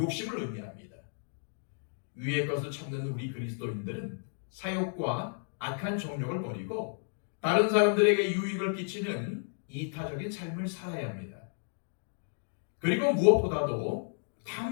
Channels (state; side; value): silent; right; digital silence